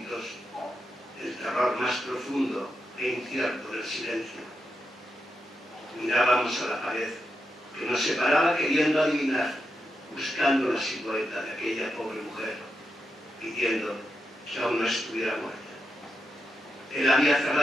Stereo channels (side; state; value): both; normal; correlation 0.86